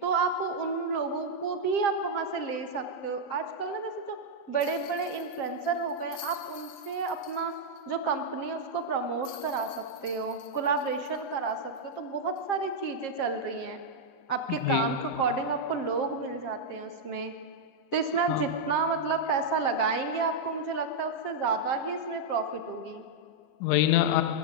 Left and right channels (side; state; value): right; late; 7.4 ms